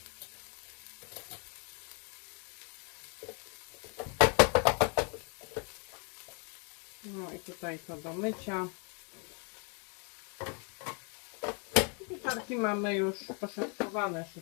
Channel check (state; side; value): quieter; right; 37.4 dB